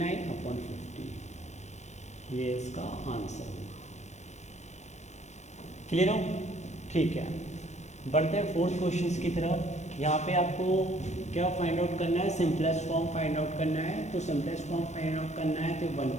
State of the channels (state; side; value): late; right; 0.33 ms